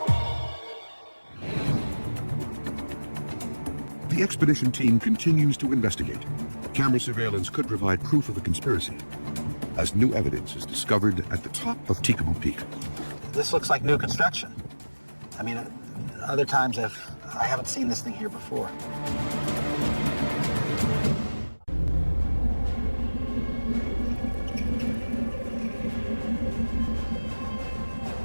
The expedition team continues to investigate. Camera surveillance could provide proof of the conspiracy, as new evidence is discovered at the top of Documen Peak. This looks like new construction. I mean, other times I haven't seen this thing here before.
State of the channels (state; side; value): inverted; both; correlation -1.00